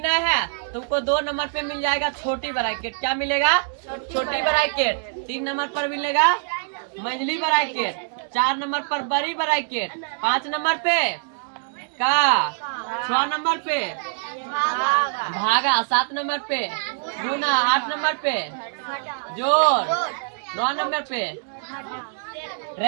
है तुमको 2 नंबर पे मिल जाएगा छोटी ब्रैकेट। क्या मिलेगा? छोटी ब्रैकेट। 3 नंबर पर मिलेगा मंझली ब्रैकेट। 4 नंबर पर बड़ी ब्रैकेट। 5 नंबर पे का 6 नंबर पे भागा। 7 नंबर पे गुना। 8 नंबर पे जोड़। 9 नंबर पे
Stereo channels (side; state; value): left; silent; digital silence